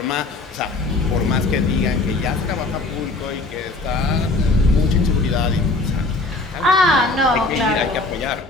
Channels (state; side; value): quieter; right; 3.3 dB